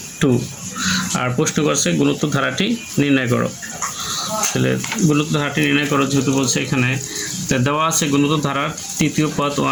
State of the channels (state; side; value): identical; both; correlation 1.00